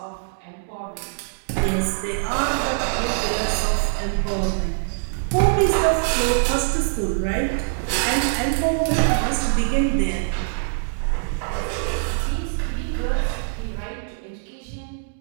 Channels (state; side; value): silent; left; digital silence